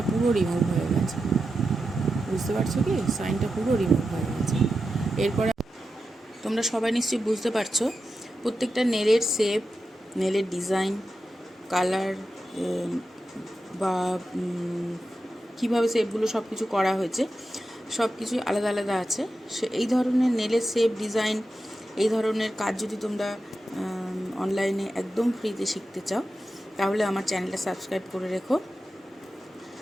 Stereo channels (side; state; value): both; normal; correlation 0.90